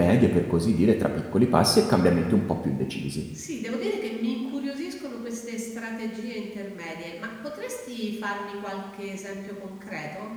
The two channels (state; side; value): identical; both; correlation 1.00